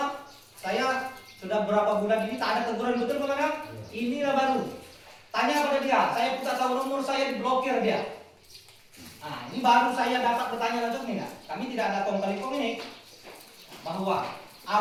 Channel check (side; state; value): both; identical; correlation 1.00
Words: saya sudah berapa bulan ini tak ada teguran betul Pak Manaf. Inilah baru Tanya pada dia, saya minta tahu nomor saya diblokir dia. Nah, ini baru saya dapat bertanya langsung nih, kami tidak ada kong kali kong ini bahwa